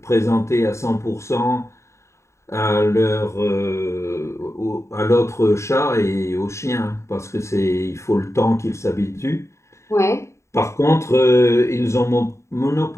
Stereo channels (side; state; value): right; late; 0.14 ms